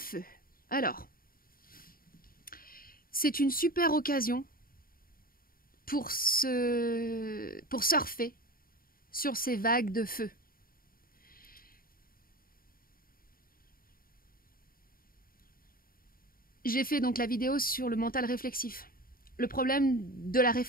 Alors, c'est une super occasion pour surfer sur ces vagues de feu. J'ai fait donc la vidéo sur le mental réflexif. Le problème de la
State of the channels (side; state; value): right; late; 0.42 ms